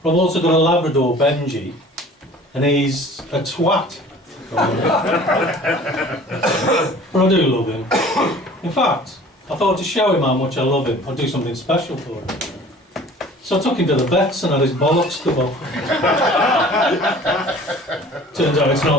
But I've also got a Labrador, Benji, and he's a twat. But I do love him. In fact, I thought to show him how much I love him, I'd do something special for him. So I took him to the vets and had his bollocks cut off. Turns out it's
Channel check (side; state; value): both; normal; correlation 0.47